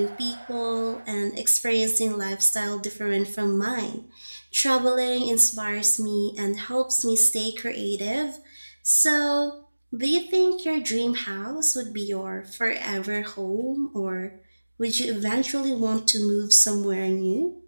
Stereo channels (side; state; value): both; inverted; correlation -1.00